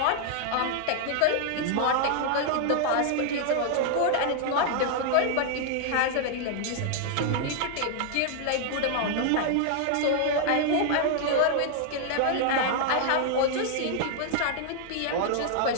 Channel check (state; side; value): different; both; correlation 0.00